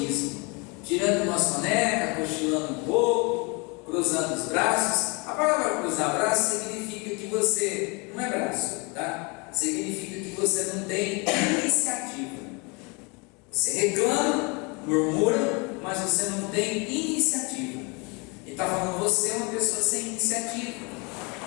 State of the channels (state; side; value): quieter; right; 30.0 dB